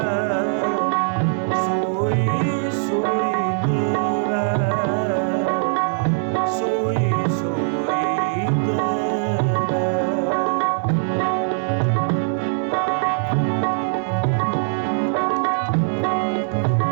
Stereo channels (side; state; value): left; silent; 65 dB below the other